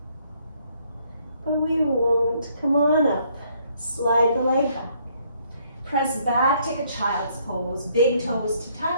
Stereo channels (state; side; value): inverted; both; correlation -0.67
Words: but we won't. Come on up. Slide the leg back. Press back, take a child's pose. Big toes to